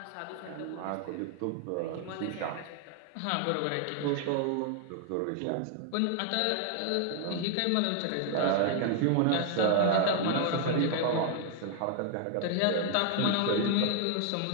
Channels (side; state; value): both; different; correlation 0.00